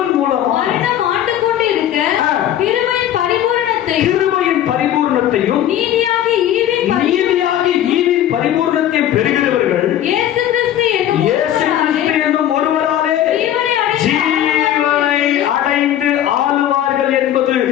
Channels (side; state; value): right; quieter; 11.6 dB